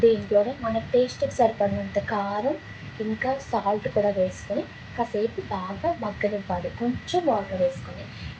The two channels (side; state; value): both; identical; correlation 1.00